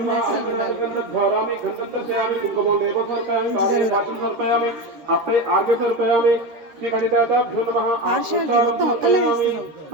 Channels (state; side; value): late; left; 13 ms